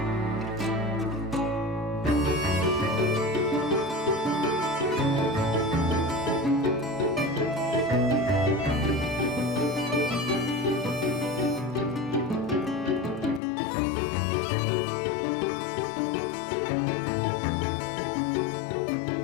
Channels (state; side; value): drops out; right; at 13.4 s